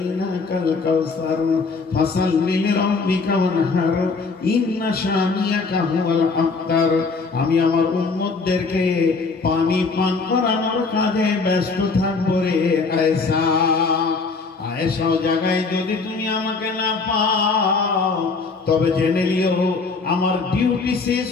কাউসার ফাসাল্লি লিরাব্বিকা ওয়ানহার ইন্না শানিয়াকা হুয়াল আবতার। আমি আমার উম্মতদেরকে পানি পান করানোর কাজে ব্যস্ত থাকবো রে আয়েশা। আয়েশা জায়গায় যদি তুমি আমাকে না পাও তবে জেনে নিও আমার ডিউটি শেষ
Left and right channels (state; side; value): quieter; right; 4.3 dB